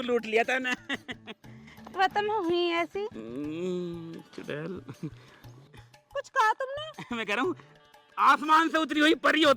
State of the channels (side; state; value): both; identical; correlation 1.00